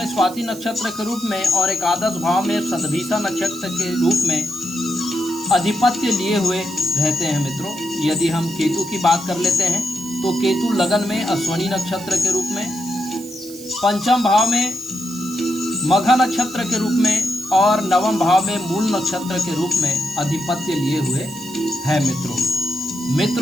स्वाति नक्षत्र के रूप में और एकादश भाव में शतभिषा नक्षत्र के रूप में अधिपत्य लिए हुए रहते हैं मित्रों। यदि हम केतु की बात कर लेते हैं तो केतु लगन में अश्वनी नक्षत्र के रूप में, पंचम भाव में मघा नक्षत्र के रूप में और नवम भाव में मूल नक्षत्र के रूप में अधिपत्य लिए हुए है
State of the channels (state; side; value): noise; right; hiss, 16 dB below the sound